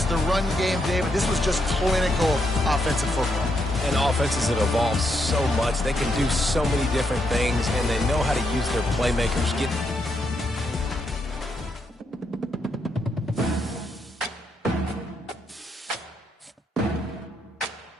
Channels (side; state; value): both; normal; correlation 0.79